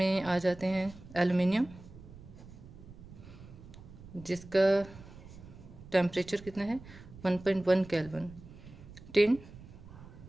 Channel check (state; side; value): noise; right; rumble, 17 dB below the sound